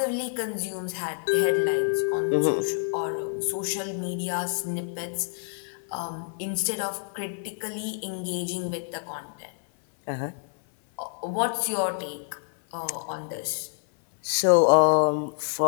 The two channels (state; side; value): silent; right; 56 dB below the other